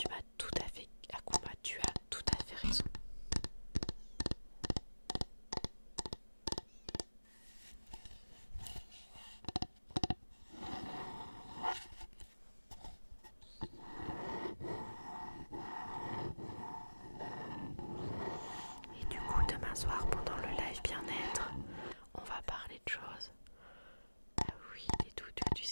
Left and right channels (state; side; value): inverted; both; correlation -1.00